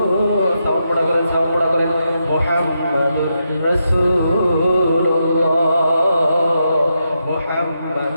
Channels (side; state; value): both; inverted; correlation -0.84